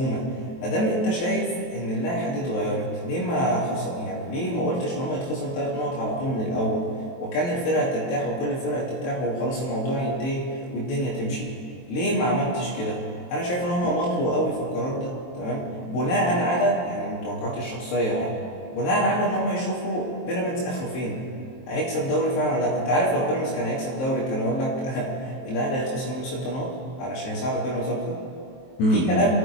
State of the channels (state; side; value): late; right; 23 ms